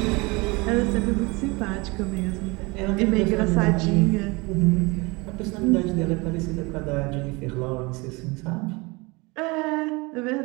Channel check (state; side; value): quieter; left; 25.6 dB